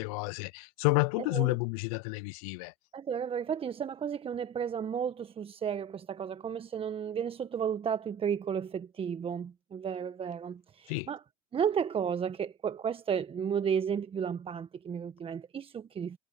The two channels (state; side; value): normal; both; correlation 0.34